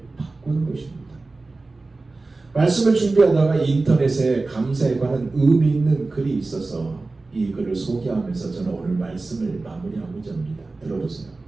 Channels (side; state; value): left; quieter; 3.5 dB